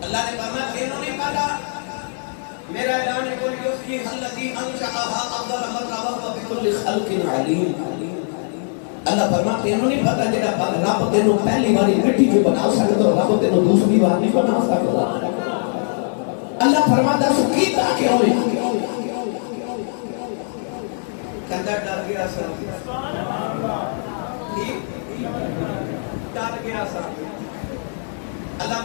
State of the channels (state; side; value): silent; right; digital silence